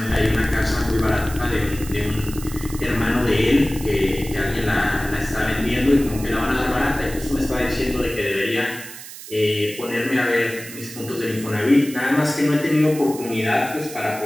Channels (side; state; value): right; noise; hiss, 13 dB below the sound